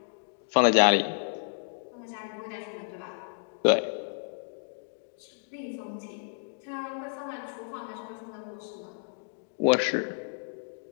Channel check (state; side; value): silent; right; digital silence